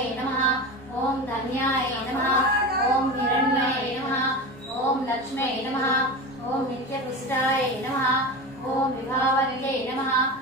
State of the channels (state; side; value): normal; both; correlation 0.26